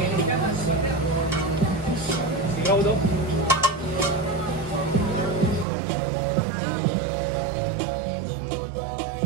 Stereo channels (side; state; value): left; drops out; at 5.7 s